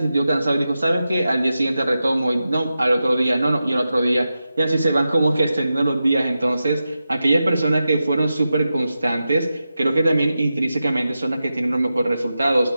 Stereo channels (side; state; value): both; inverted; correlation -0.91